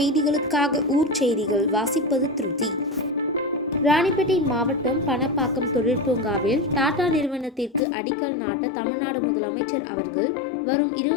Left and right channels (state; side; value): drops out; right; at 7.8 s